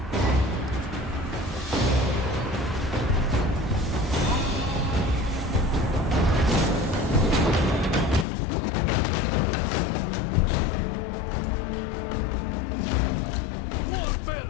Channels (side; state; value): right; drops out; at 8.2 s